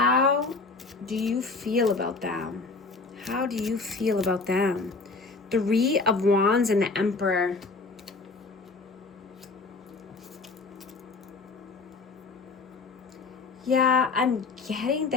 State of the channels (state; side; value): quieter; right; 4.0 dB